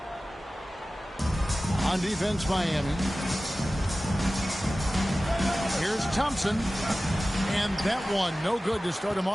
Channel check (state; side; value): normal; both; correlation 0.96